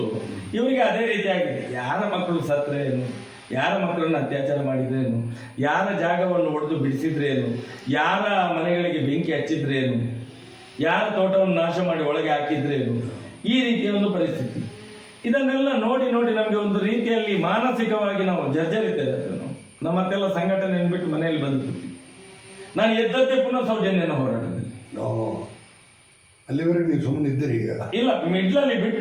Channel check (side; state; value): both; identical; correlation 1.00